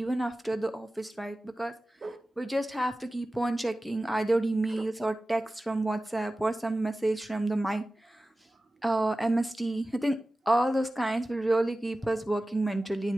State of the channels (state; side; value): normal; both; correlation 0.96